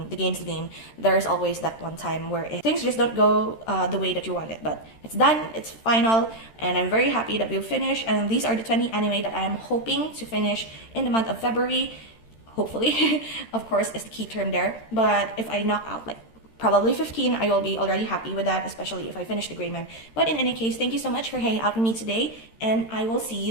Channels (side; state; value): right; late; 13 ms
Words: game's the game. There's always that one time where things just don't go the way that you want it, but it's done, it's final, and I'm very happy that we've finished. And these are the 20 anime that I am hoping to finish in the month of February. Hopefully. Of course, is the key term there. But if I knock out like probably 15, I will be already happy with that, especially if I finish the Gray Man. But in any case, thank you so much for hanging out with me today, and I will see